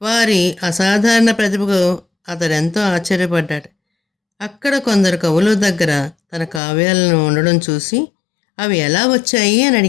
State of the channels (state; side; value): drops out; right; at 6.6 s